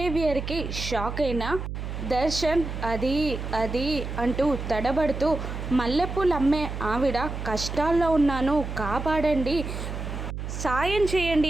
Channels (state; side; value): noise; right; hum, 6 dB below the sound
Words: షాక్ అయిన దర్శన్ అది అది అంటూ తడబడుతూ, మల్లెపూలు అమ్మే ఆవిడ కష్టాల్లో ఉన్నాను కాపాడండి, సాయం చేయండి